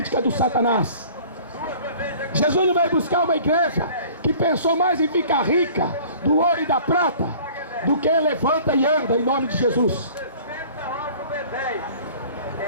do Satanás. Jesus não veio buscar uma igreja que pensou mais em ficar rica do ouro e da prata do que levanta e anda em nome de Jesus.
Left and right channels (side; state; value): both; inverted; correlation -0.48